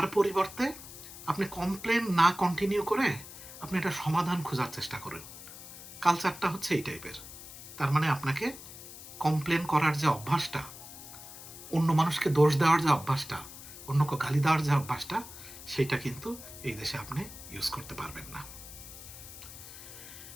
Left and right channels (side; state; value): left; noise; hiss, 14 dB below the sound